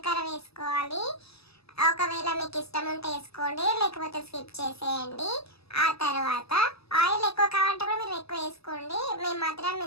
వేసుకోవాలి. ఒకవేళ మీకు ఇష్టం ఉంటే వేసుకోండి, లేకపోతే స్కిప్ చేసేయండి. ఆ తర్వాత ఆయిల్ ఎక్కువ కావాలంటే కూడా మీరు ఎక్కువ వేసుకోండి. మేము మాత్రం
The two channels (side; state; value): right; late; 0.78 ms